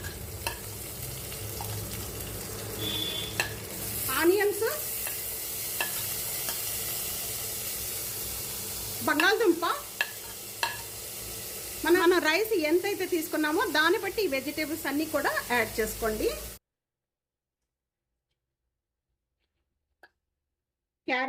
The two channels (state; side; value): identical; both; correlation 1.00